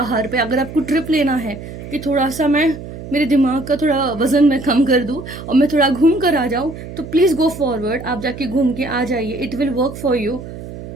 पे। अगर आपको ट्रिप लेना है कि थोड़ा सा मेरे दिमाग का थोड़ा वजन मैं कम कर दूं और मैं थोड़ा घूम कर आ जाऊं, तो प्लीज गो फॉरवर्ड, आप जाके घूम के आ जाइए, it will work for you.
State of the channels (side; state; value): right; noise; hum, 12 dB below the sound